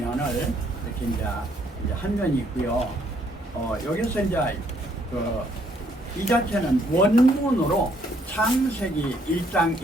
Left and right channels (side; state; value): both; normal; correlation 0.68